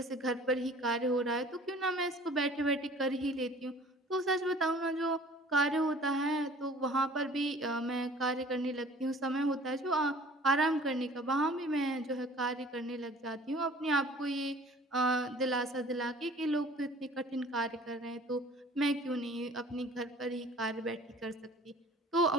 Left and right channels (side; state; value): both; normal; correlation 0.49